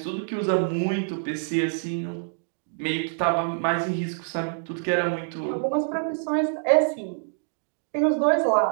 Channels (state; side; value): silent; left; digital silence